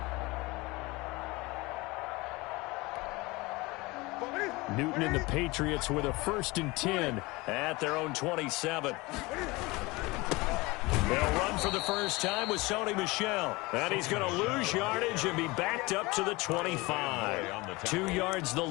Newton and the Patriots with a 1st and 10 at their own 27. They'll run for the first time with Sony Michel. And he's going to lose yardage and be backed up to the 25. 2 yards the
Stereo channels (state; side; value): quieter; right; 23.0 dB